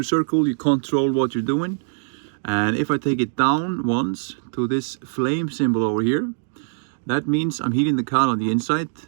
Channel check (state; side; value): silent; left; digital silence